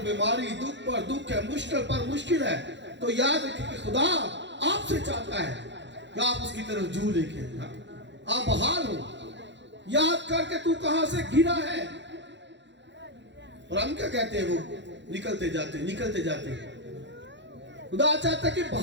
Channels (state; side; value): late; left; 0.52 ms